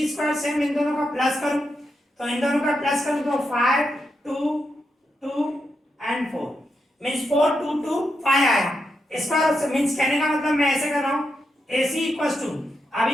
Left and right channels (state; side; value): normal; both; correlation 0.85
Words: स्क्वायर सेम इन दोनों का प्लस करूं तो इन दोनों का प्लस करूं तो 5 2 2 एंड 4 मींस 4 2 2 5 आया। इसका मींस कहने का मतलब मैं ऐसे कर रहा हूं AC इक्वल्स टू,